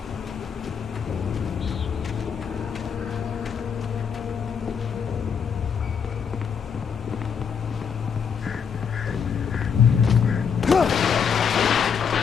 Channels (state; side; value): quieter; right; 6.8 dB